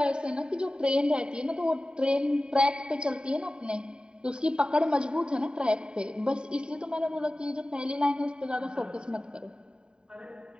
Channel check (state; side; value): late; left; 0.049 ms